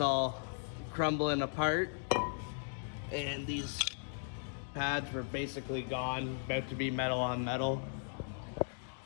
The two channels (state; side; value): silent; right; digital silence